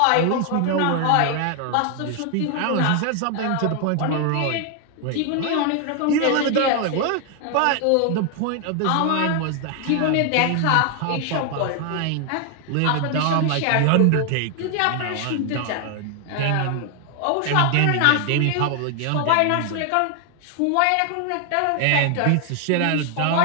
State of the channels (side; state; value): both; different; correlation 0.00